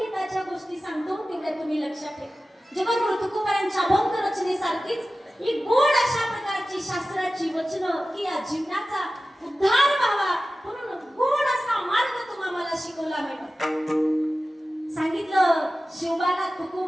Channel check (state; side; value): normal; both; correlation 0.95